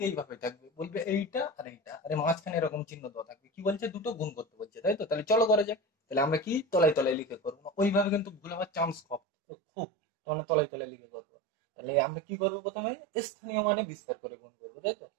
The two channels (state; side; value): drops out; left; at 9.2 s